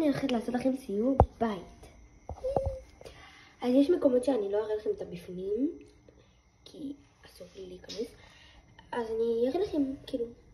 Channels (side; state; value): both; identical; correlation 1.00